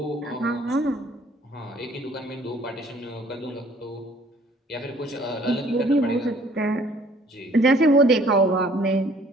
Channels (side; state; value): both; normal; correlation 0.57